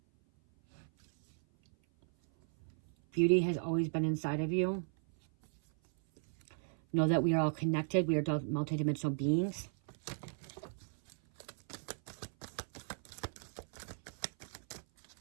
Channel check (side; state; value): left; silent; 54 dB below the other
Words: Beauty has always been inside of you. Know that we are all connected. We are multidimensional beings.